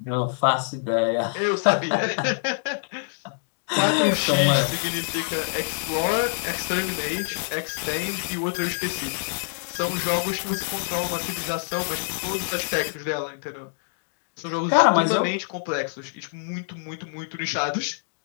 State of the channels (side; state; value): right; silent; digital silence